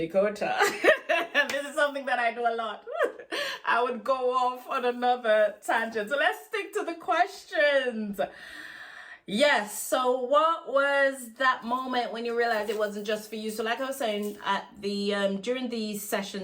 This is something that I do a lot. I would go off on another tangent. So let's stick to the questions. Yes, so what was that moment when you realized it wasn't just for you? So like I was saying, at the during these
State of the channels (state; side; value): identical; both; correlation 1.00